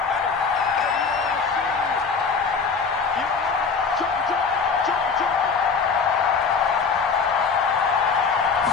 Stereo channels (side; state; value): right; quieter; 5.2 dB